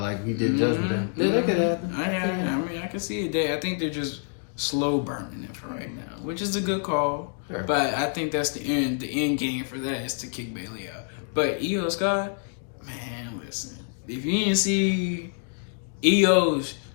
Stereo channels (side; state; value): right; silent; 57 dB below the other